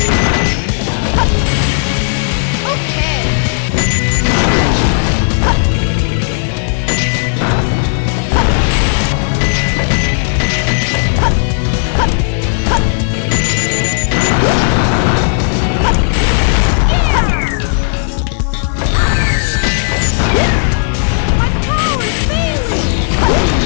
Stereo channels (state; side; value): silent; right; digital silence